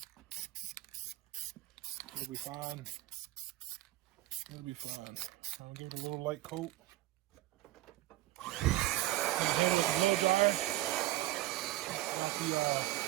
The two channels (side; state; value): left; quieter; 16.4 dB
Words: It'll be fine. It'll be fine. I'll give it a little light coat.